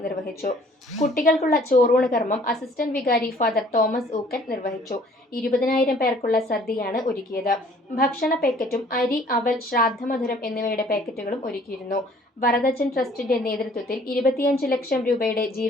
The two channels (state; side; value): normal; both; correlation 0.56